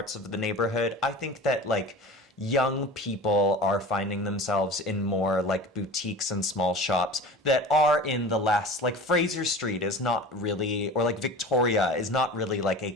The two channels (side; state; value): both; normal; correlation 0.37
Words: of the neighborhood, I think that like young people are finding themselves in more like boutiques and small shops that are in the less like Fraser Street is not really, or like Victoria is not really like a